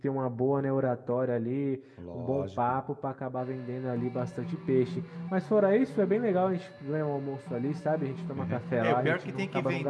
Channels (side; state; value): both; identical; correlation 1.00